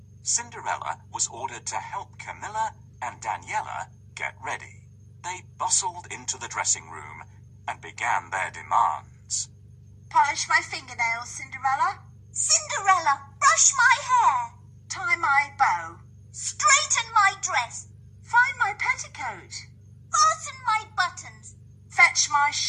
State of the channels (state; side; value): identical; both; correlation 1.00